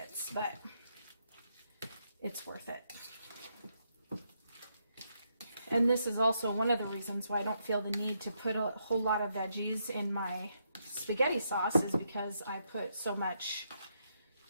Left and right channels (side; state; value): both; inverted; correlation -0.79